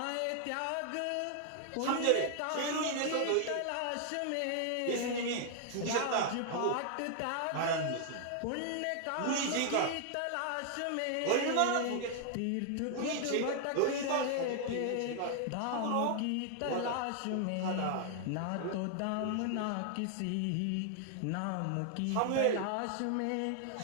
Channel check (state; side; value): different; both; correlation 0.00